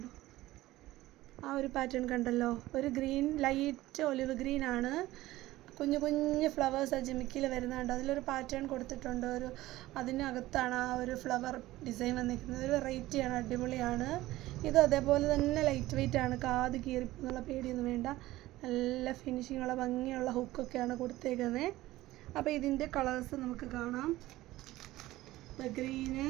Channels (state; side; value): quieter; left; 16.9 dB